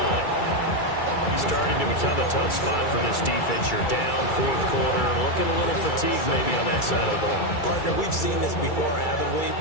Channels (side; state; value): right; late; 2.3 ms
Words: Starting to become a tough spot for this defense. You're down fourth quarter, looking a little fatigued maybe on that side of the ball. Partner, we've seen this before, haven't we?